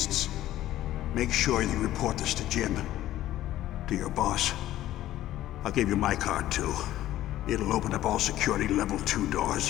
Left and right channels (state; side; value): quieter; right; 14.0 dB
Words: Make sure you report this to Jim. To your boss. I'll give you my card too. It'll open up all security level 2